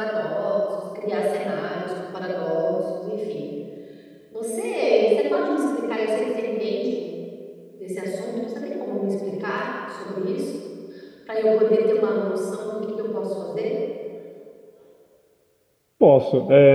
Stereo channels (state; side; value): identical; both; correlation 1.00